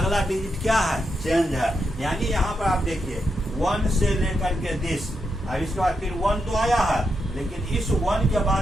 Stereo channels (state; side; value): normal; both; correlation 0.84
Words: डिजिट क्या है, चेंज है। यानी यहाँ पर आप देखिए 1 से लेकर के 10, अब इसके बाद फिर 1 तो आया है, लेकिन इस 1 के